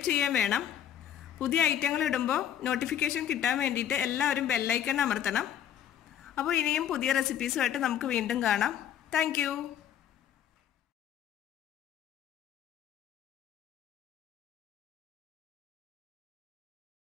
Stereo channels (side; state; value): right; quieter; 10.0 dB